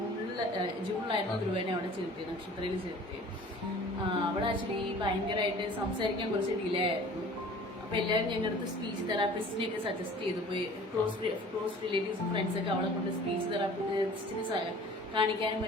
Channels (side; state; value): both; normal; correlation 0.46